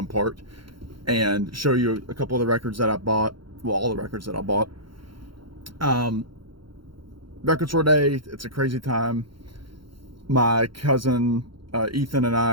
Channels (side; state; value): left; late; 0.73 ms